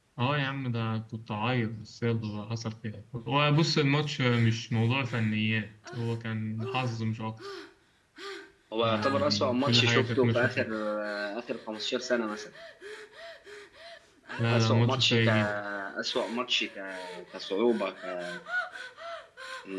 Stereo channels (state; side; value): identical; both; correlation 1.00